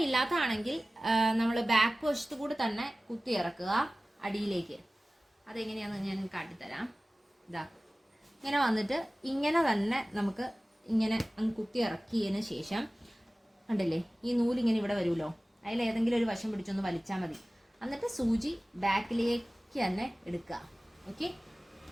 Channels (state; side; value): normal; both; correlation 0.97